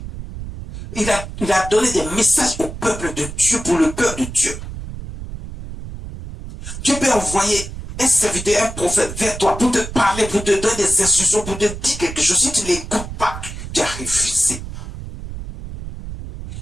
Il a donné des messages au peuple de Dieu, pour le peuple de Dieu. Dieu peut envoyer un serviteur, un prophète vers toi pour te parler, pour te donner des instructions, pour te dire quelque chose. Si tu ne l'écoutes pas, tu as refusé.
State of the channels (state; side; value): noise; right; rumble, 10 dB below the sound